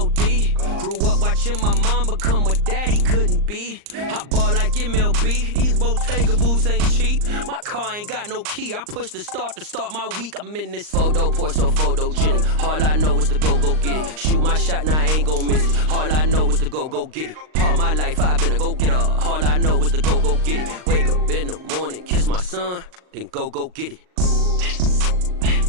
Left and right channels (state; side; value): late; left; 39 ms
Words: Grew up watching my mom become what daddy couldn't be. I ball like MLB, these Bottega boots ain't cheap. My car ain't got no key, I push the start to start my week. I'm in this photo poor, so photogenic. All I know is to go get it. Shoot my shot, now I ain't gon' miss it. All I know is to go get it. All my life I've been a go-getter. All I know is to go get it. Wake up in the morning, kiss my son, then go get it.